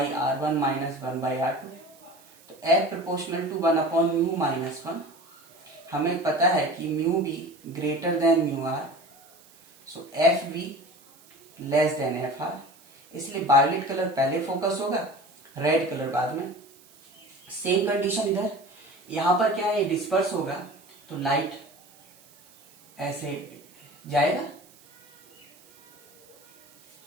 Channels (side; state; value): right; noise; hiss, 27 dB below the sound